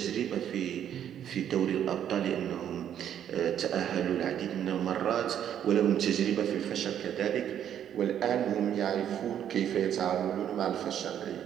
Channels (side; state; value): left; quieter; 9.9 dB